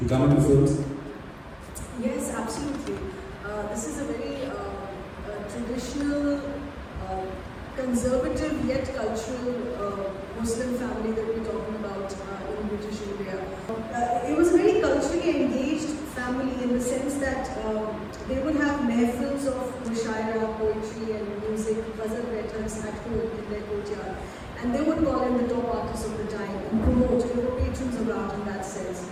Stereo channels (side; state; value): both; identical; correlation 1.00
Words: come into films? Yes, absolutely. This is a very traditional, conservative yet cultural Muslim family that we're talking about in British India. It was a very culturally engaged family in the sense that they would have mehfils of mushaira, poetry and music, ghazal writers at home in their courtyard. And they would call in the top artists of the time and promote. They were patrons of art in that sense.